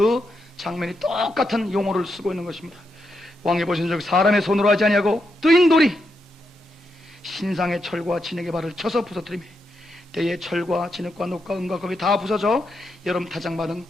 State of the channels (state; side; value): normal; both; correlation 0.83